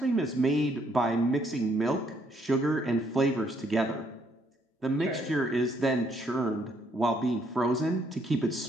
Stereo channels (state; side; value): normal; both; correlation 0.70